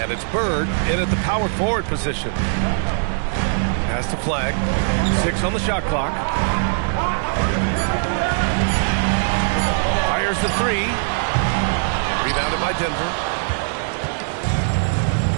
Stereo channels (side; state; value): left; silent; 65 dB below the other